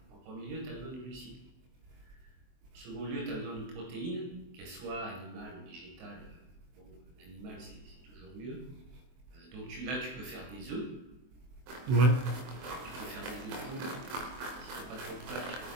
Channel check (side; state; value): left; late; 23 ms